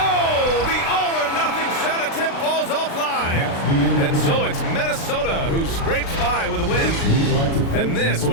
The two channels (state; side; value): late; right; 36 ms